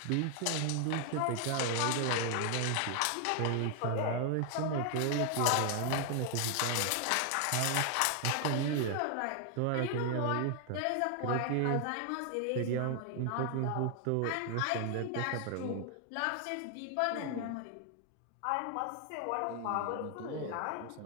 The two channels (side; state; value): both; different; correlation 0.00